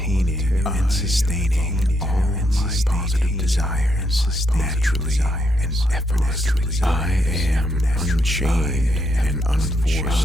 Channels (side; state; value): both; normal; correlation 0.78